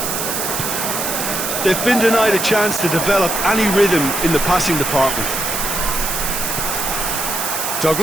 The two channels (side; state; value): right; noise; hiss, 2 dB below the sound